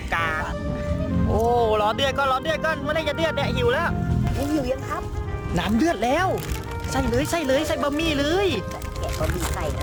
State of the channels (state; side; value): identical; both; correlation 1.00